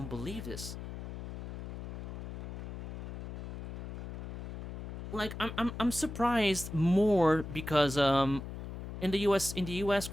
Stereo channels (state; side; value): noise; left; hum, 7 dB below the sound